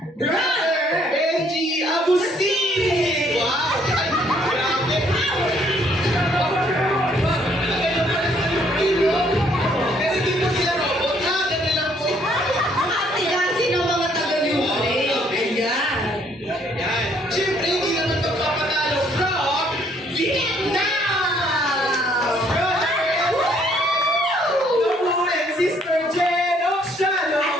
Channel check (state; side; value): normal; both; correlation 0.66